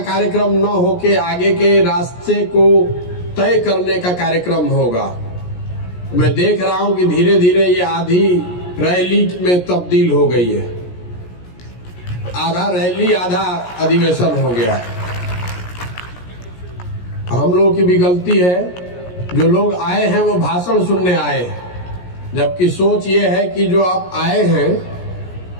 कार्यक्रम न होके आगे के रास्ते को तय करने का कार्यक्रम होगा। मैं देख रहा हूं कि धीरे धीरे ये आधी रैली में तब्दील हो गई है, आधा रैली आधा अधिवेशन हो गया है। हम लोगों की भी गलती है, जो लोग आए हैं वो भाषण सुनने आए हैं, जबकि सोच ये है कि जो आप आए हैं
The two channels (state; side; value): late; right; 17 ms